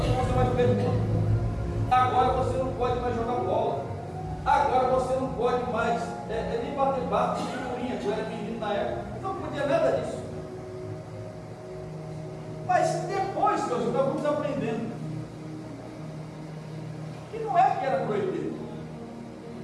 não vai mais pergunta, agora você não pode mais jogar bola, agora você não pode mais nem bater bate de figurinha, que eu era menino na época, não podia nada disso. Mas depois que nós estávamos aprendendo que não é que era proibido,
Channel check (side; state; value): both; identical; correlation 1.00